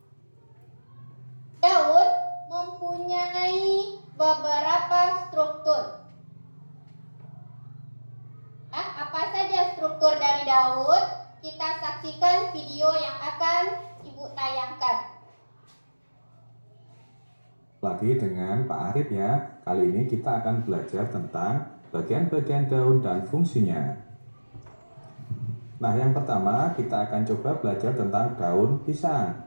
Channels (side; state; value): both; inverted; correlation -1.00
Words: Daun mempunyai beberapa struktur. Apa saja struktur dari daun? Kita saksikan video yang akan ibu tayangkan. Lagi dengan Pak Arif ya. Kali ini kita akan belajar tentang bagian-bagian daun dan fungsinya. Nah, yang pertama kita akan coba belajar tentang daun